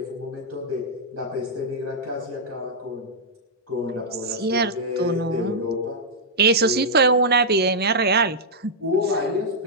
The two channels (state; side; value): normal; both; correlation -0.08